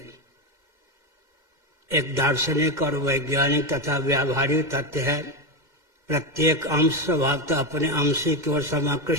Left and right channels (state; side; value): late; left; 2.1 ms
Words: एक दार्शनिक और वैज्ञानिक तथा व्यावहारिक तथ्य है, प्रत्येक अंश स्वभावतः अपने अंशी की ओर